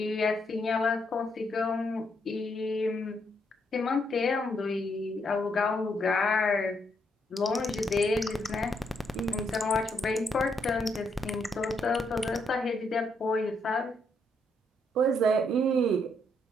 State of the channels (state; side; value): normal; both; correlation 0.76